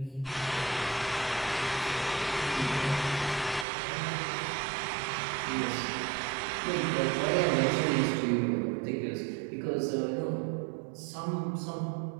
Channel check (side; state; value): left; drops out; at 3.7 s